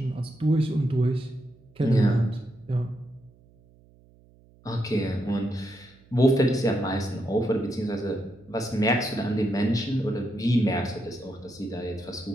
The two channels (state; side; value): noise; right; hum, 28 dB below the sound